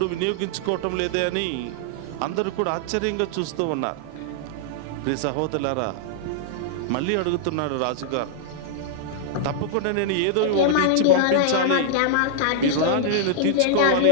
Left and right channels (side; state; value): both; different; correlation -0.01